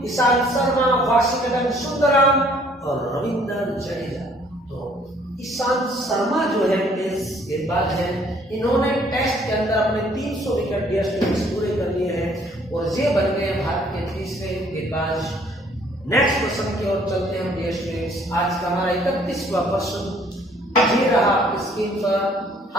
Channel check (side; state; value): both; normal; correlation 0.61